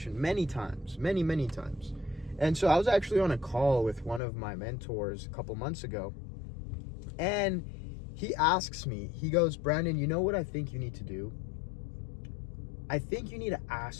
many times. And so I was actually on a call with one of my mentors a couple months ago, and he asks me, he goes, "Brandon, you know what I think you need to do? I think you need to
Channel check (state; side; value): drops out; right; at 4.2 s